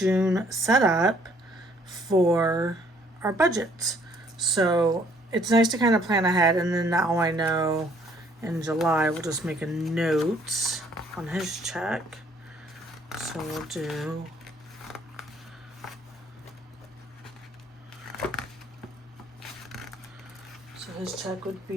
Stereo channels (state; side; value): normal; both; correlation 0.62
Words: setup for our budget. So it's nice to kind of plan ahead, and then now I know in July we'll just make a note on his check. So we'll do his check would